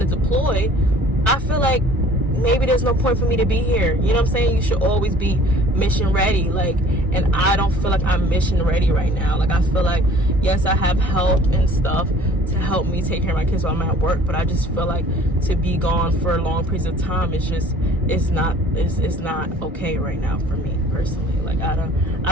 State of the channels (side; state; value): both; normal; correlation 0.51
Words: to deploy, I feel like maybe there's no point for me to be here. You know what I'm saying? You should always be mission ready. Like, and I don't feel like I'm mission ready right now. Like, I feel like, yes, I have help and stuff to help me take care of my kids while I'm at work, but I just feel like to be gone for long periods of time, it's not okay right now for me personally. Like, I